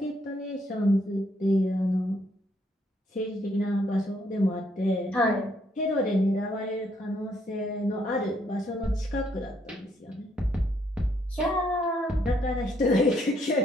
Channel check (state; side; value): normal; both; correlation 0.71